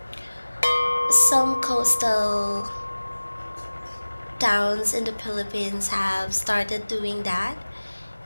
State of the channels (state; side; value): inverted; both; correlation -1.00